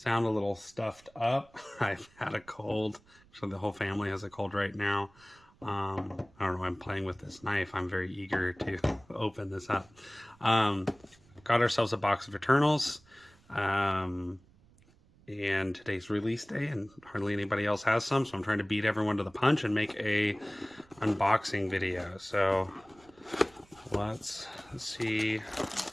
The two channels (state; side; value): noise; right; rumble, 28 dB below the sound